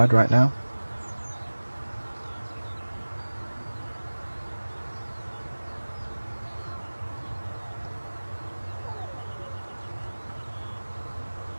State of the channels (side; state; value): both; inverted; correlation -1.00